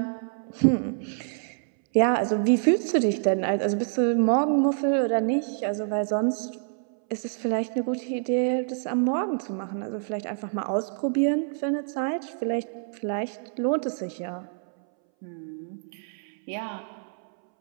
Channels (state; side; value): silent; left; 60 dB below the other